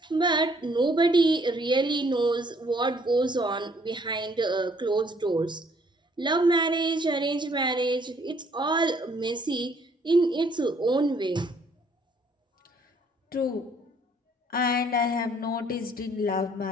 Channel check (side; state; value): both; normal; correlation 0.63